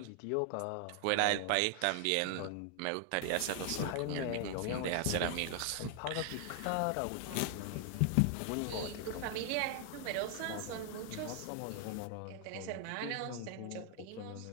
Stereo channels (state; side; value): different; both; correlation 0.00